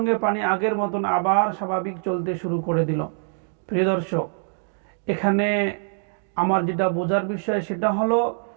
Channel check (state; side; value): silent; left; 63 dB below the other